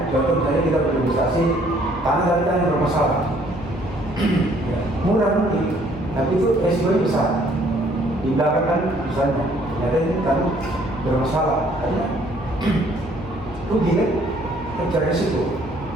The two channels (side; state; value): left; noise; hum, 16 dB below the sound